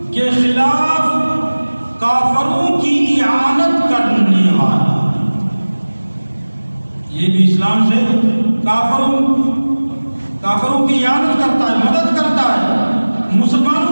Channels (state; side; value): inverted; both; correlation -1.00